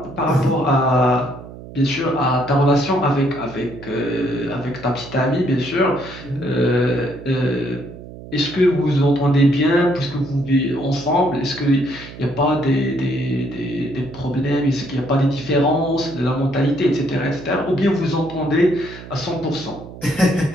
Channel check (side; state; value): right; noise; hum, 15 dB below the sound